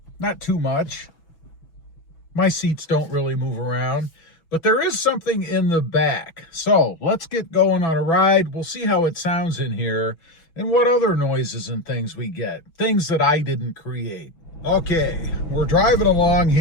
not too much. My seats don't really move around, but there is something in the back. So let's get going on a ride. We'll see how it sounds in here and what other noises and things we get, things that I didn't create. Okay, we're driving along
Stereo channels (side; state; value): right; late; 6.0 ms